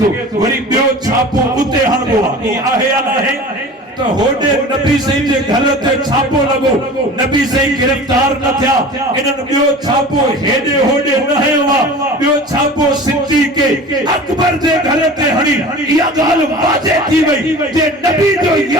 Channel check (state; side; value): normal; both; correlation 0.38